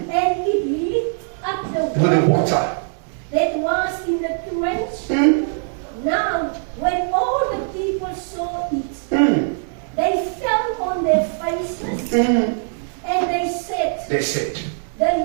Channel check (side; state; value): left; silent; 65 dB below the other